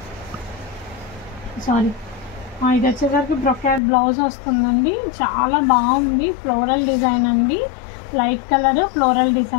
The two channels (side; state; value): right; drops out; at 3.8 s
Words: సారీ ఇది వచ్చేసరికి బ్రొకెట్ బ్లౌజ్ వస్తుందండి. చాలా బాగుంది, ఫ్లోరల్ డిజైన్ అండి, light colour floral